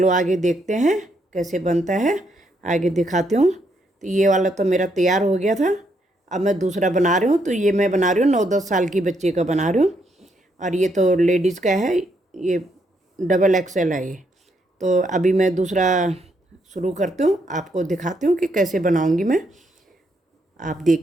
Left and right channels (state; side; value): normal; both; correlation 0.75